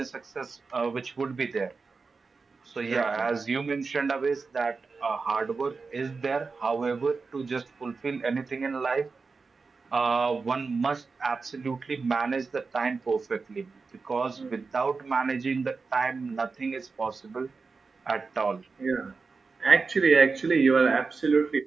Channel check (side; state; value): left; quieter; 4.5 dB